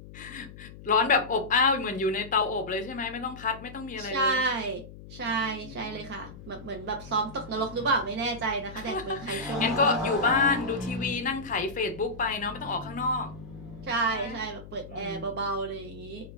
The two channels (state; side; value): noise; left; hum, 16 dB below the sound